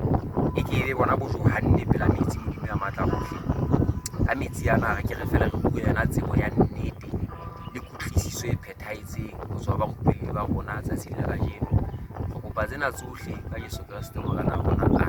e ke be bona bojohanne pela metsi modimo ya matla hohle a metsi ana re ke re fela re bua yana tsebo ya nnete le kutlwisiso e phethahetseng ho tswa ba rupelli ba rona tsatsing la kajeno re kopa tsena tsohle ka Jesu Kriste morena.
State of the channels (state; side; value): identical; both; correlation 1.00